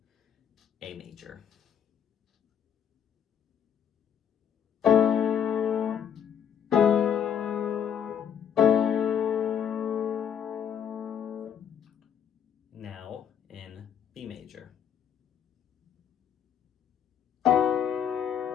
A major. Now in B major.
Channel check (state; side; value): quieter; right; 8.6 dB